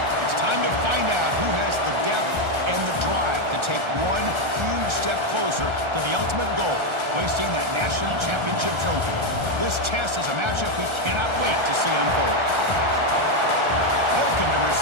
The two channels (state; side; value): late; left; 1.3 ms